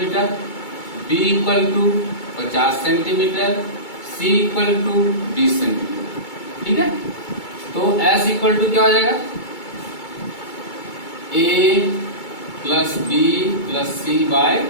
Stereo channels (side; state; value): right; late; 2.2 ms